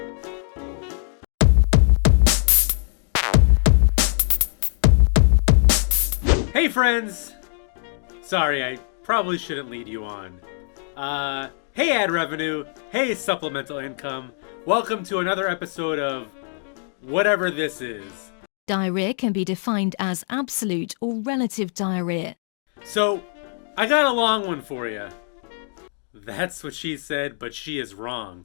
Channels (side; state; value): right; silent; digital silence